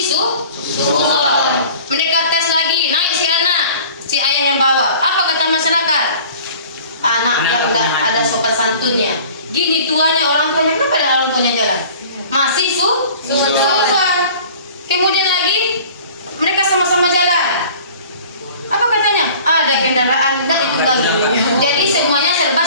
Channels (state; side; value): inverted; both; correlation -0.46